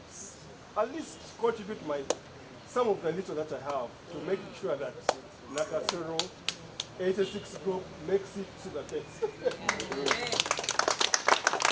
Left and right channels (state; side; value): identical; both; correlation 1.00